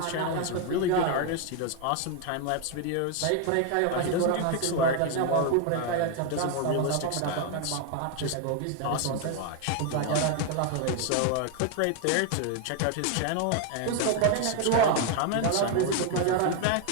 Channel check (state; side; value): different; both; correlation 0.01